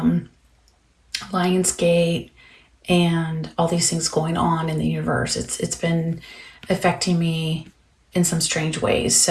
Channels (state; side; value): identical; both; correlation 1.00